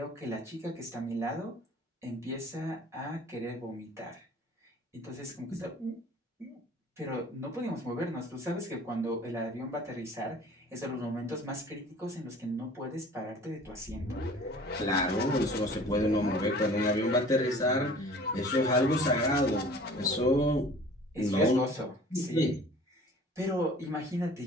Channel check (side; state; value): both; normal; correlation 0.47